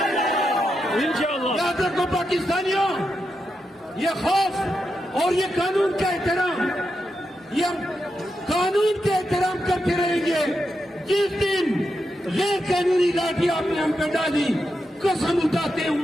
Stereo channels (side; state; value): both; normal; correlation 0.86